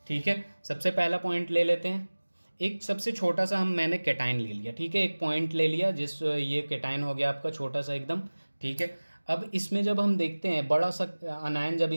ठीक है। सबसे पहला पॉइंट ले लेते हैं, एक सबसे छोटा सा मैंने कैटायन ले लिया। ठीक है। एक पॉइंट ले लिया, जिस ये कैटायन हो गया आपका छोटा सा एकदम। ठीक है। अब इसमें जब हम देखते हैं बड़ा सा अनायन जब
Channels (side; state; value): both; inverted; correlation -1.00